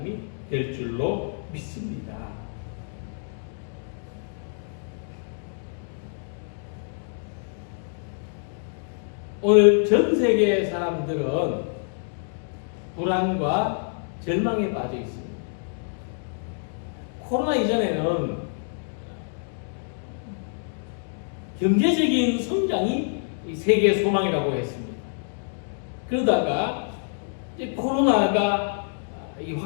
될 줄로 믿습니다. 오늘 전 세계의 사람들은 불안과 절망에 빠져 있습니다. 코로나 이전에는 경제적인 성장이 세계의 소망이라고 했습니다. 그러다가 이제 코로나가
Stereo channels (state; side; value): silent; right; digital silence